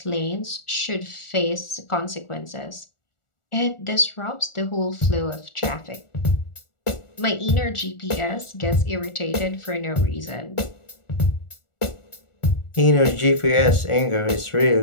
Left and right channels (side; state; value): right; late; 1.4 ms